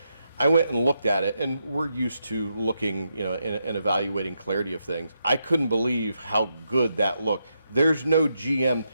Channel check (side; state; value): both; inverted; correlation -0.83